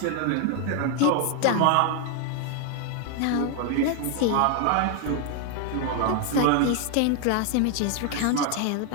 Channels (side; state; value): both; different; correlation 0.00